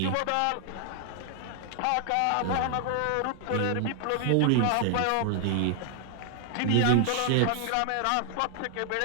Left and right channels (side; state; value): both; different; correlation 0.00